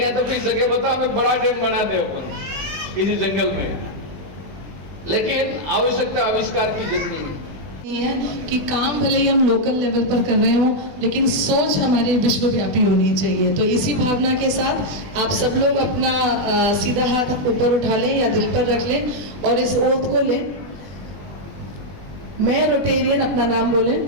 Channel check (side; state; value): left; late; 20 ms